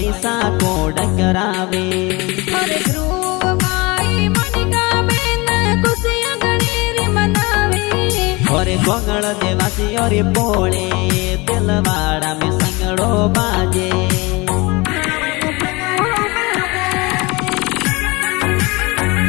सा कोड करावे। और ध्रुव भाई मनिका बेन खुशियां गणेरी मनावे। और गोंगल देवासी और पोले दिलवाड़ा में संगड़ो बाजे।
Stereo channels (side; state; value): right; quieter; 25.0 dB